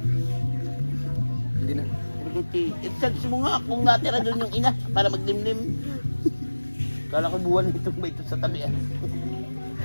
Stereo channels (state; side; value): inverted; both; correlation -1.00